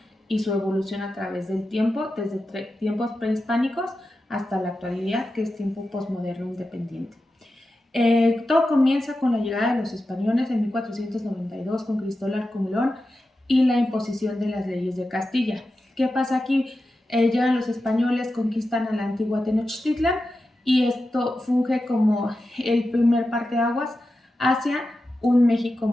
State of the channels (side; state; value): both; normal; correlation 0.91